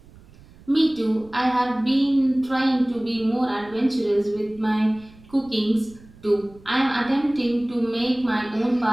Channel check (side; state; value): right; noise; rumble, 24 dB below the sound